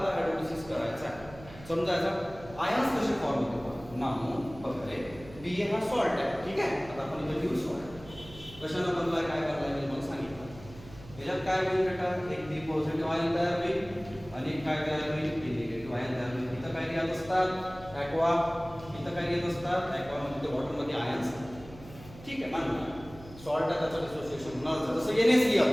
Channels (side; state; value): right; noise; hum, 18 dB below the sound